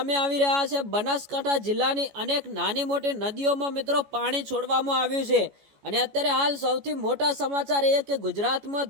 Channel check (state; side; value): late; left; 14 ms